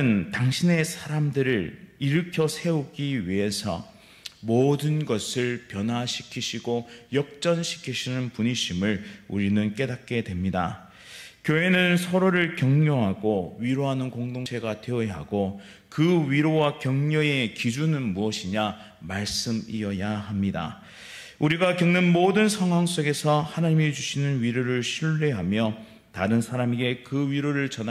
당신의 사람들을 일으켜 세우기 위해서 모든 것을 변화시키시고 역전시키시는 분이심을 우리는 깨닫게 됩니다. 교회는 서로를 격려하고 위로하는 공동체가 되어야 하고 그 위로와 격려의 기준은 무엇이냐? 말씀이어야 합니다. 우리가 겪는 모든 상황 속에서 하나님이 주시는 위로를 신뢰하며 다른 사람에게 그 위로를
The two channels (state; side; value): identical; both; correlation 1.00